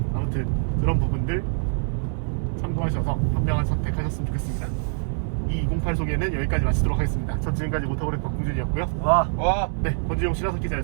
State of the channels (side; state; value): left; silent; 62 dB below the other